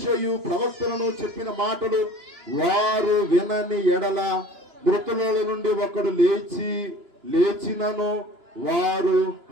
ప్రవక్తలను చెప్పిన మాటలు వారు వినని ఎడల మృతుల నుండి ఒకడు లేచినను వారు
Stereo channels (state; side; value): late; left; 2.9 ms